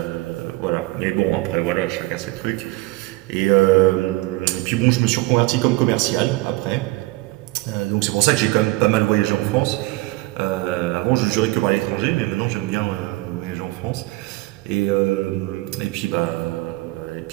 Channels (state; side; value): quieter; left; 21.1 dB